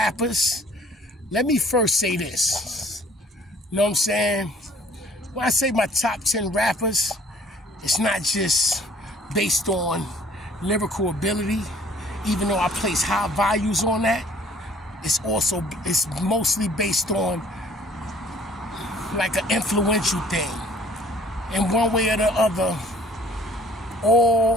let me first say this. You know what I'm saying? When I say my top 10 rappers, it's not just based on lyrical ability, even though I place high values on that. It's mostly based on like an influential thing. In one way or the other,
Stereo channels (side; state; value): both; normal; correlation 0.56